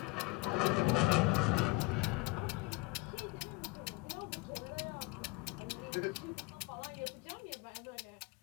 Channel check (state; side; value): quieter; right; 24.2 dB